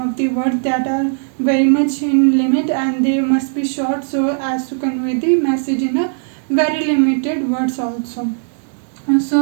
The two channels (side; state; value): left; silent; digital silence